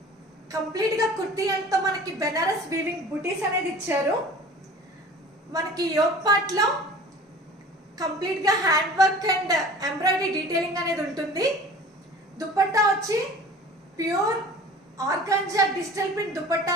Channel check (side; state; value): both; normal; correlation 0.43